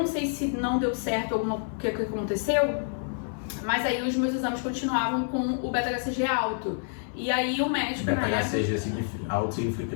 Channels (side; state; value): right; silent; 58 dB below the other